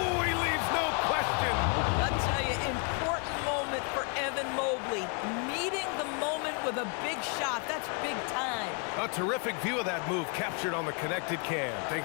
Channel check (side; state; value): right; quieter; 37.5 dB